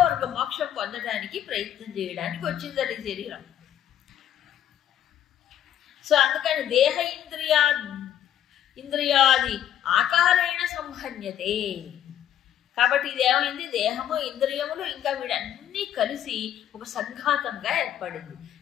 మోక్షం పొందడానికి ప్రయత్నం చేయడానికి వచ్చిందని శరీరం. సో అందుకని దేహ ఇంద్రియాది ఆకారేణ సంహన్యతే. కాబట్టి ఇది ఏమైంది, దేహము ఇంద్రియములు ఇంకా వీడన్నీ కలిసి ఒక సంఘాతంగా ఏర్పడింది,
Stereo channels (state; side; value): quieter; right; 10.7 dB